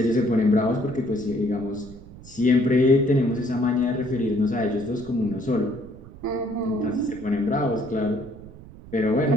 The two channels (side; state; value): right; noise; rumble, 18 dB below the sound